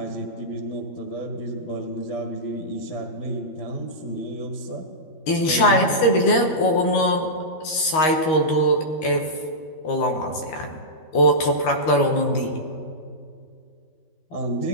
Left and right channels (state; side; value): late; right; 13 ms